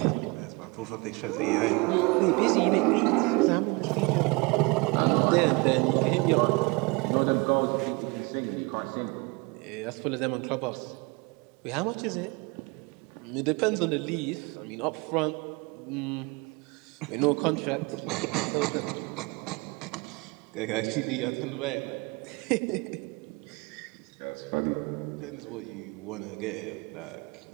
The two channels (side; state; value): left; quieter; 27.4 dB